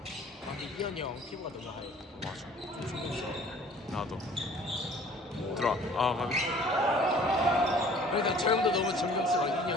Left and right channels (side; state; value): both; normal; correlation 0.51